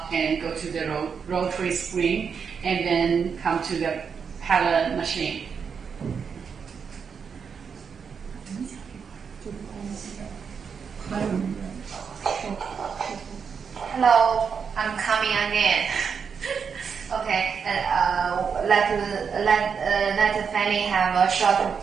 and go to the rotary spring, and then come to the pellet machine. Hello, I'm coming again. Okay, let Fanny have a short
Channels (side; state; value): left; quieter; 6.4 dB